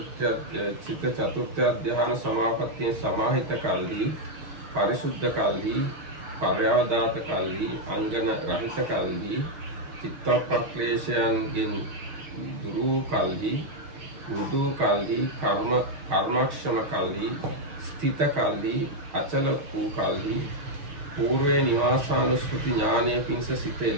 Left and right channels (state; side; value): late; left; 6.4 ms